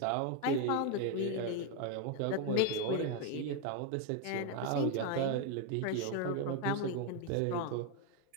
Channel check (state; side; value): different; both; correlation 0.01